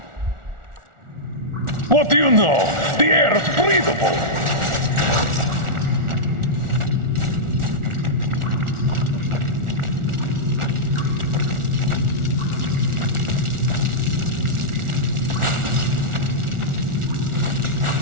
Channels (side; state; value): left; late; 1.4 ms